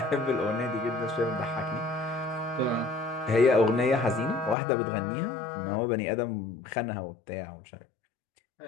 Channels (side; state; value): right; drops out; at 4.5 s